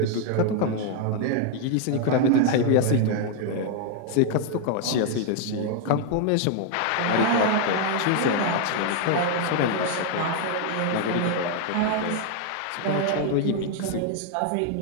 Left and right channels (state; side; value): different; both; correlation 0.00